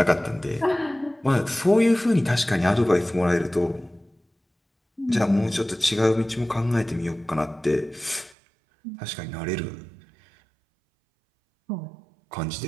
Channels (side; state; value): left; drops out; at 8.3 s